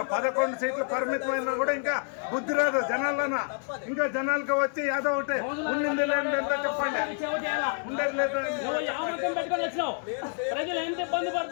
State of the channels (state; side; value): silent; right; 56 dB below the other